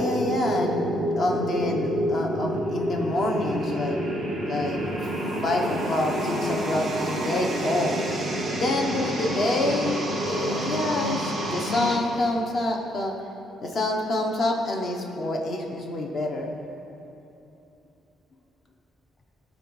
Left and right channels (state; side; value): normal; both; correlation 0.71